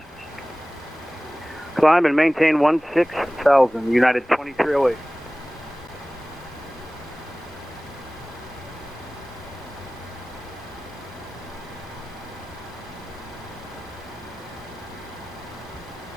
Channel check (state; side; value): normal; both; correlation 0.98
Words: Climb and maintain 16,000, United 2308.